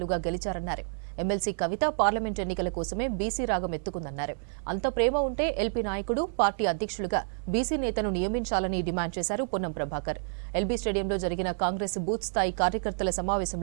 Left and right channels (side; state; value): left; silent; 58 dB below the other